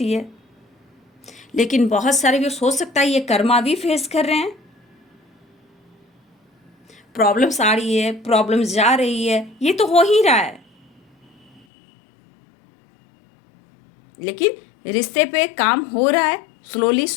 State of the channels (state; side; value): drops out; right; at 11.7 s